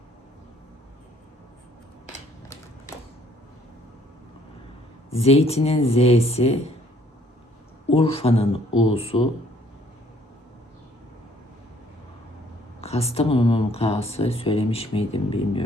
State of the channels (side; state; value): both; normal; correlation 0.62